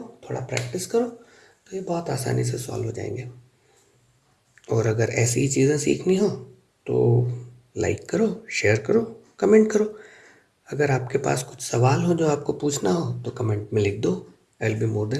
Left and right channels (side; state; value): both; identical; correlation 1.00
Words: थोड़ा प्रैक्टिस करो, तो ये बहुत आसानी से सॉल्व हो जाएंगे। और अगर ऐसी ही चीज़ें सीखनी हो तो लाइक करो, शेयर करो, कमेंट करो। अगर आपके पास कुछ सवाल हो जो आपको पूछना हो तो कमेंट में लिख दो। I will be more